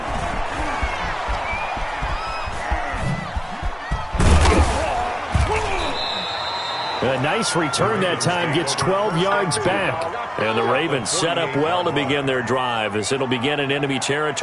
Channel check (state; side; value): identical; both; correlation 1.00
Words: A nice return that time, gets 12 yards back. And the Ravens set up well to begin their drive as it'll begin in enemy